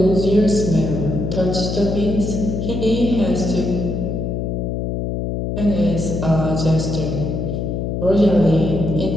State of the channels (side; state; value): left; noise; hum, 2 dB below the sound